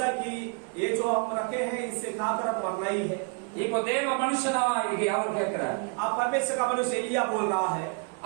कि ये जो हम रखे हैं इससे खाकर अब मरना ही है। இப்போ தேவ மனுஷனா அவர் கேட்கிறார். अब परमेश्वर का मनुष्य एलिया बोल रहा है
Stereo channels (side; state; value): left; quieter; 34.9 dB